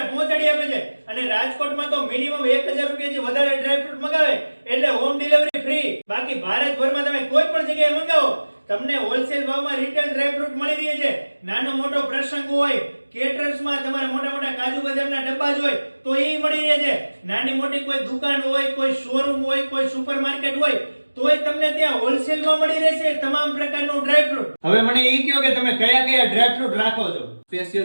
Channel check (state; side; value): inverted; both; correlation -1.00